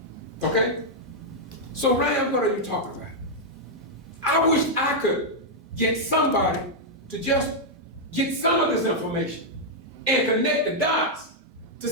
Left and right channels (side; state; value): both; normal; correlation -0.04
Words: Okay? So Ryan, what are you talking about? I wish I could get somebody to just get some of this information and connect the dots to